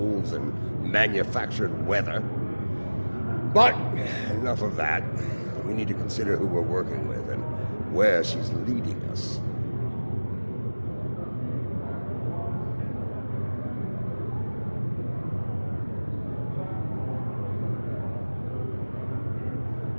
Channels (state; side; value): inverted; both; correlation -1.00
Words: and manufactured weather. But enough of that. We need to consider who we're working with and where she's leading us.